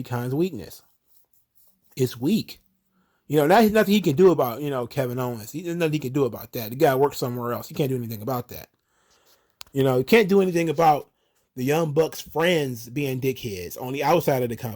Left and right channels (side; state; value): both; identical; correlation 1.00